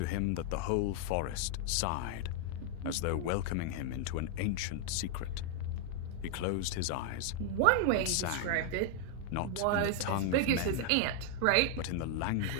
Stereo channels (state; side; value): different; both; correlation 0.00